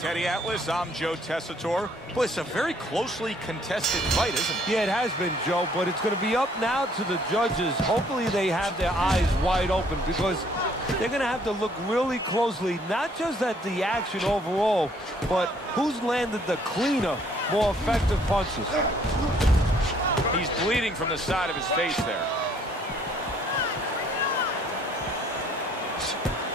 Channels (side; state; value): both; normal; correlation 0.62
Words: Atlas, I'm Joe Tessitore. Boy, it's a very closely contested fight, isn't it? Yeah, it has been, Joe, but it's going to be up now to the judges. Hopefully they have their eyes wide open because they're going to have to look really closely, not just at the action overall, but who's landed the cleaner, more effective punches. He's bleeding from the side of his face there.